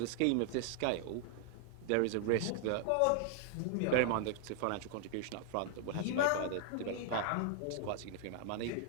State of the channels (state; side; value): different; both; correlation 0.00